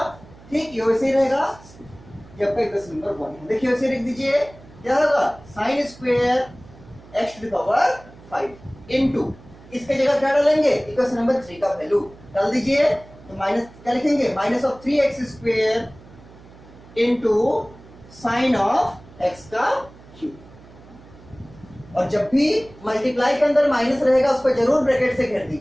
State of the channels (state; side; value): noise; right; hum, 22 dB below the sound